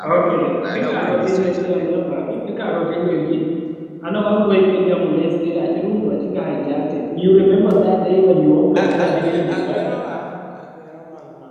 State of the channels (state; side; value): identical; both; correlation 1.00